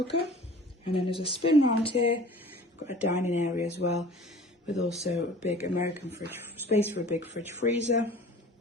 and then there's a spin round here. We've got a dining area as well, with also a big American fridge, space for a big fridge freezer,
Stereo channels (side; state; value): both; normal; correlation 0.45